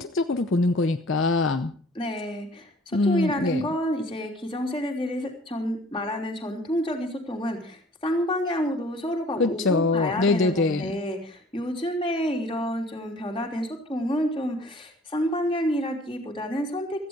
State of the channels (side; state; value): both; normal; correlation 0.51